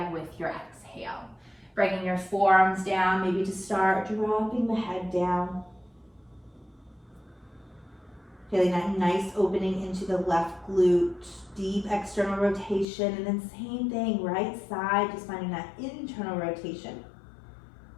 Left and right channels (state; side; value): drops out; right; at 12.9 s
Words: with your exhale. Bringing your forearms down, maybe to start dropping the head down. Feeling that nice opening into the left glute, deep external rotation, and then same thing, right side, just finding that internal rotation.